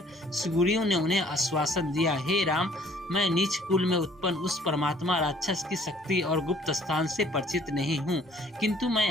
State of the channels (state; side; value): normal; both; correlation 0.57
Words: सुग्रीव ने उन्हें आश्वासन दिया, हे राम, मैं नीच कुल में उत्पन्न उस परमात्मा राक्षस की शक्ति और गुप्त स्थान से परिचित नहीं हूँ, किंतु